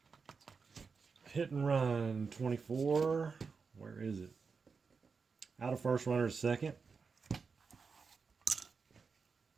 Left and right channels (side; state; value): left; quieter; 5.1 dB